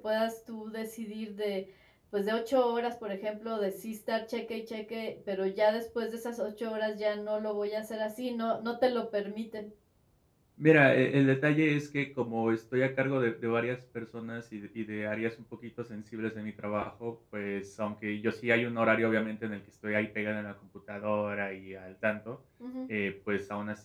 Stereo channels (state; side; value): identical; both; correlation 1.00